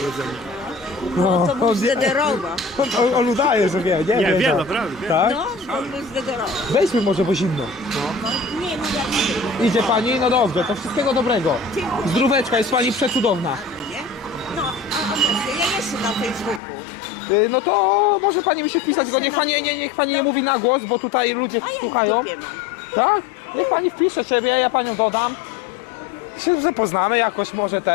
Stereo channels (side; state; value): right; drops out; at 16.6 s